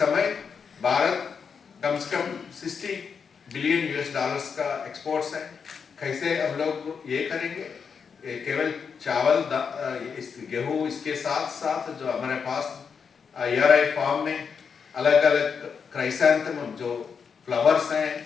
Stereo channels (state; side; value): quieter; right; 6.2 dB